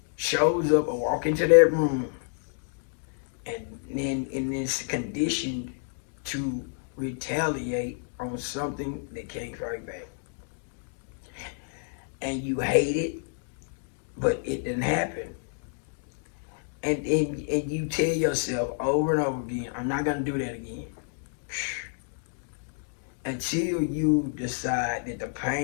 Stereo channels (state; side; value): silent; right; digital silence